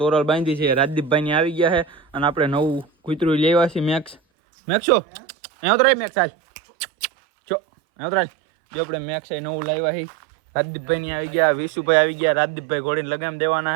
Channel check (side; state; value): left; drops out; at 4.2 s